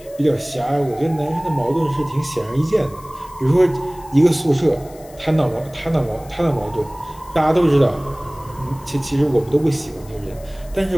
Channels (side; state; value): left; noise; hiss, 24 dB below the sound